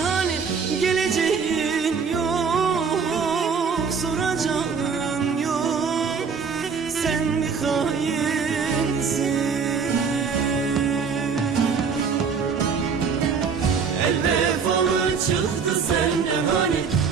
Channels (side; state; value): left; quieter; 5.8 dB